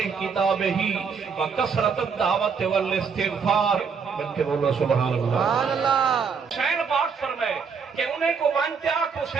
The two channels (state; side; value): quieter; left; 5.9 dB